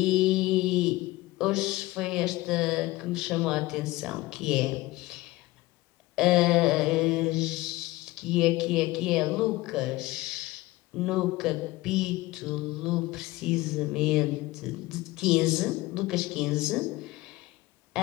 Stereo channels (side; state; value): right; quieter; 19.2 dB